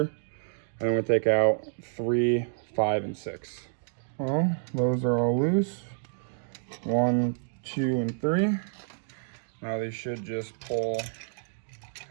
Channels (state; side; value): silent; left; digital silence